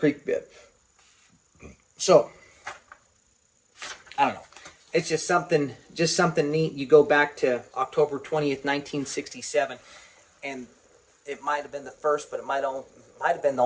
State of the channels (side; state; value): both; identical; correlation 1.00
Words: bed. So, I don't know. It's just something neat. You go back to October 20th, 1967, and it might have been the first, but it might have been the